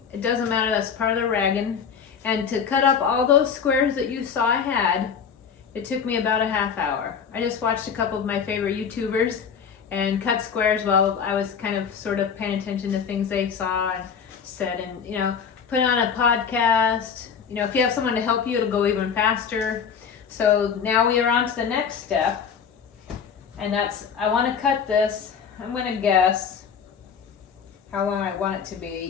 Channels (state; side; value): quieter; right; 6.8 dB